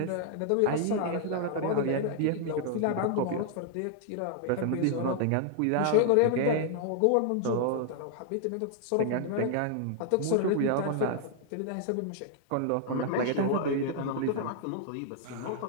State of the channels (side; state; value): both; different; correlation 0.00